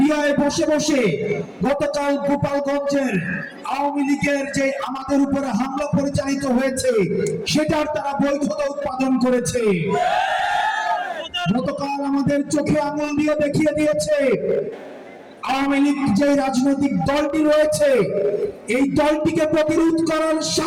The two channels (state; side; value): identical; both; correlation 1.00